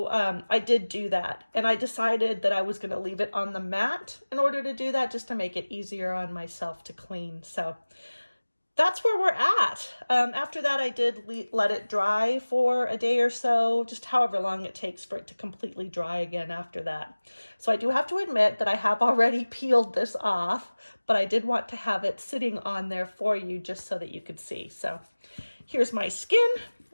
I did do that, and I decided that I was going to leave it on the mat in order to do that, just to make it easier on myself to clean. So that's where we're at. After that, I did let it dry for a day or so, just however long it takes for it to completely dry again after that. So I do have to admit that I have already peeled this off, but I did want to have it sitting on there for you just so that you could see. So here's my skin,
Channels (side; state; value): both; inverted; correlation -1.00